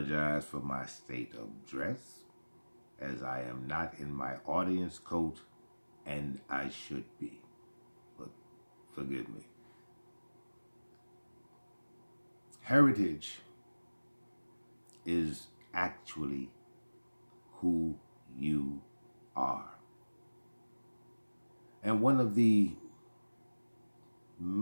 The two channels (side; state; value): both; inverted; correlation -1.00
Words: for my state of dress, as I am not in my audience coat, and I should be, but forgive me. Heritage is actually who you are. And one of the